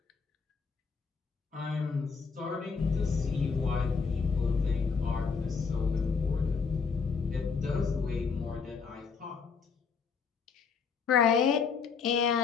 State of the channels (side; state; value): right; quieter; 5.5 dB